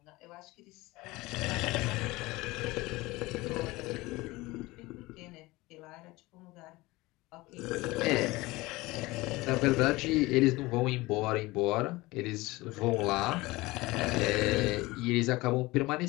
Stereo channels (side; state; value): right; quieter; 20.8 dB